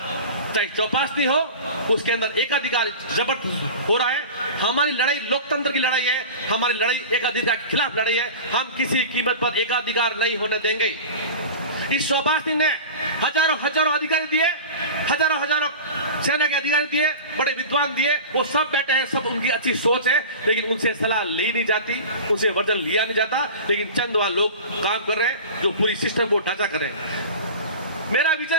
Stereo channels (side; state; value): both; inverted; correlation -0.33